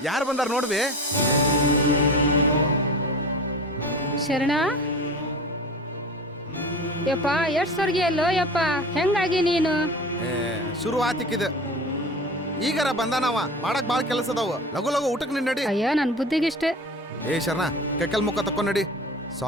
ಯಾರು ಬಂದಾರ ನೋಡ್ಬೇ ಶರಣ ಯಪ್ಪ ಎಷ್ಟ್ ಸರ್ಗಿ ಅಲ್ಲೋ ಯಪ್ಪ ಹೆಂಗಾಗಿ ನೀನು ಶುರು ಆತಿಕ್ಕಿದ ಈಗಾರ ಬಂದಾನವ ಮಾಡಕ್ ಬಾಳ ಕೆಲಸ ಅದಾವ ಲಗು ಲಗು ಊಟಕ್ಕೆ ನಿನ್ ನಡಿ ಅಯ್ಯೋ ನನ್ ಬುದ್ಧಿಗಿಷ್ಟೇ ಏ ಶರಣ ಕೆಕ್ಕಲ್ ಮುಖ ತಕೊಂಡ್ ನಡಿ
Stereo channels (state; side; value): normal; both; correlation 0.35